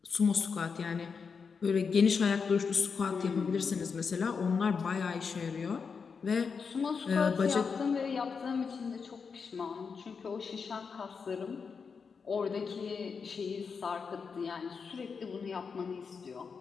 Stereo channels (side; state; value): right; quieter; 5.6 dB